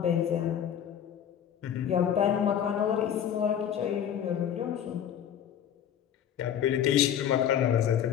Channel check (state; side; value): quieter; right; 9.4 dB